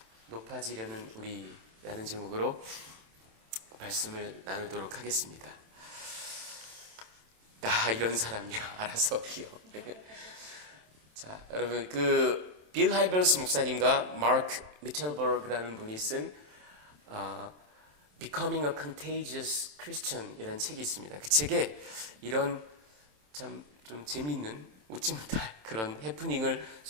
높아지려는 우리라는 제목으로 말씀을 나누도록 하겠습니다. 나 이런 사람이야. 알아서 기어. 자, 여러분 빌 하이버스 목사님과 마크 미첼버그라는 분이 쓴 Becoming a Contagious Christian 이라는 책이 있습니다. 그 책에 이런 참 좀 재미있는 웃지 못할 그런 해프닝을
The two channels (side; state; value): left; late; 27 ms